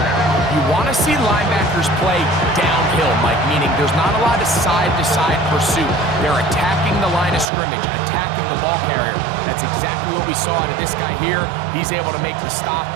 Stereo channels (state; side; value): drops out; left; at 7.5 s